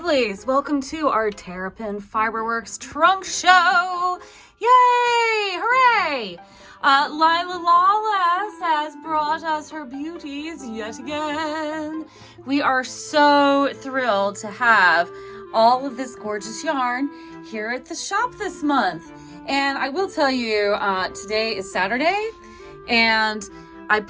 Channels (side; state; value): both; identical; correlation 1.00